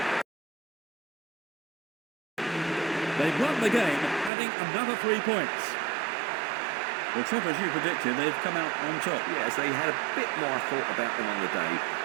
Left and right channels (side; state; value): left; drops out; at 4.3 s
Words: They've won the game, adding another 3 points. Well, Trevor, as you predicted, they've come out on top. Yes, they had a bit more thought about them on the day.